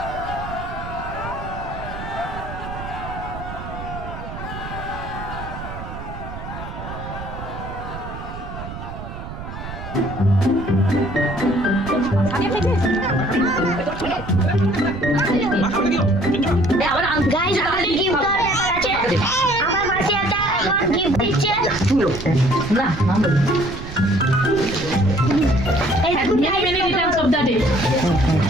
গাইস আমাদের গিফট আছে, আমার মাসি একটা গিফট দিচ্ছে। না এই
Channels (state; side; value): noise; right; rumble, 10 dB below the sound